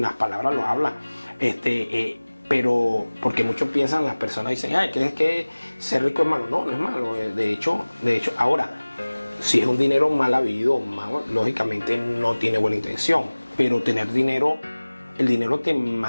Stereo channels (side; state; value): both; inverted; correlation -1.00